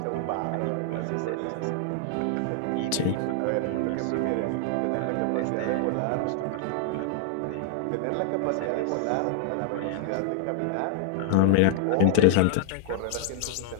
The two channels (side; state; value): both; different; correlation -0.01